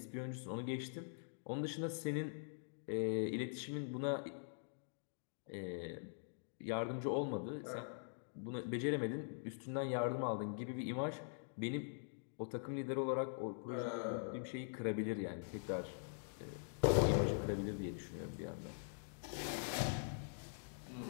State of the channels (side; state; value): right; silent; digital silence